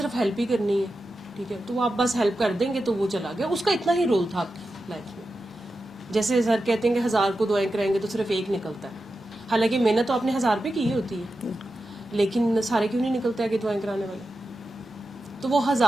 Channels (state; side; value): normal; both; correlation 0.91